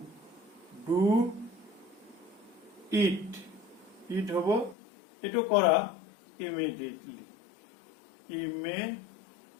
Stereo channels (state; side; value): drops out; right; at 4.8 s